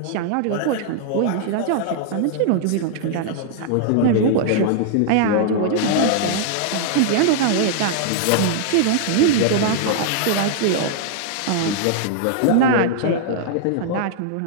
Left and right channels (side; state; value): both; different; correlation -0.01